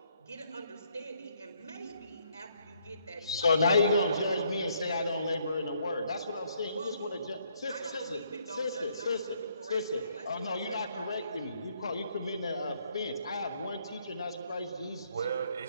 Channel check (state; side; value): inverted; both; correlation -0.70